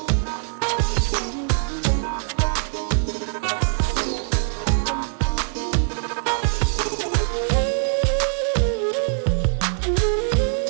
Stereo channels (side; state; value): left; silent; digital silence